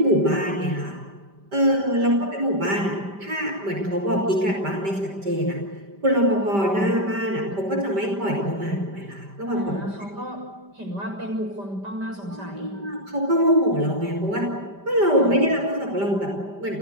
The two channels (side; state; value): left; late; 5.1 ms